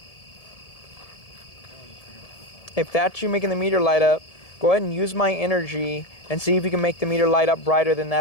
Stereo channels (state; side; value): late; right; 1.7 ms